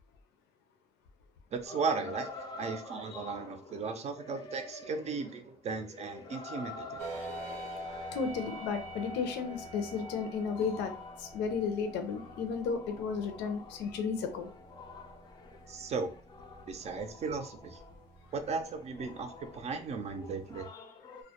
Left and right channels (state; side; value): normal; both; correlation 0.36